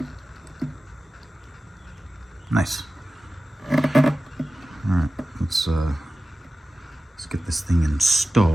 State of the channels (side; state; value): both; normal; correlation 0.95